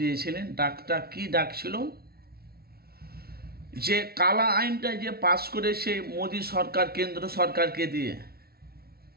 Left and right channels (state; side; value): late; left; 0.45 ms